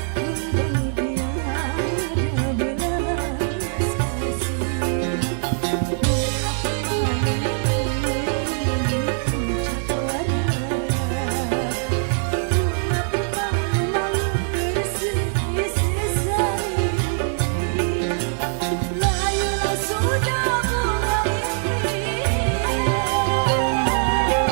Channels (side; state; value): left; silent; 62 dB below the other